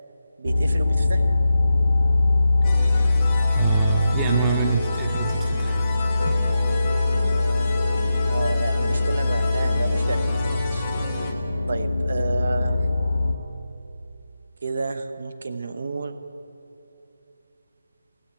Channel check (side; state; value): both; inverted; correlation -0.89